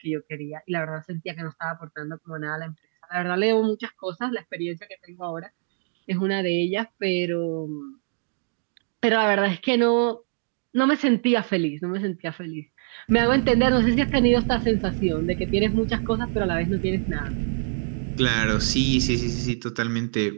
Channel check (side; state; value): left; silent; 56 dB below the other